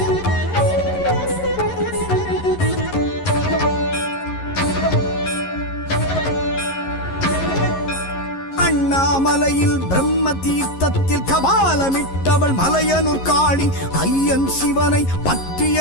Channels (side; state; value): right; late; 11 ms